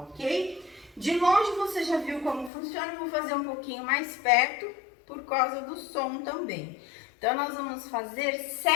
De longe você já viu como funciona, eu vou fazer um pouquinho mais perto por causa do som também. Então, nós vamos fazer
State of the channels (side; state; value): right; drops out; at 2.5 s